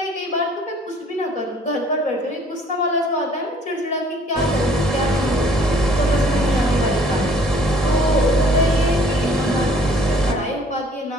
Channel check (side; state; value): both; normal; correlation 0.57